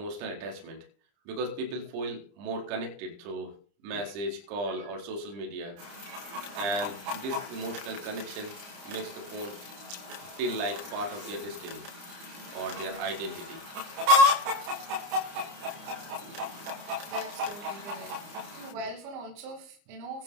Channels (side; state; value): left; late; 29 ms